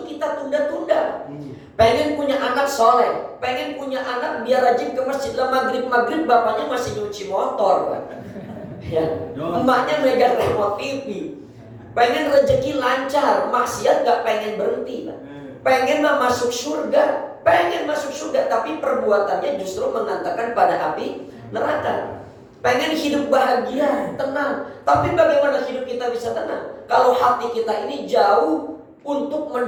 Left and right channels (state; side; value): identical; both; correlation 1.00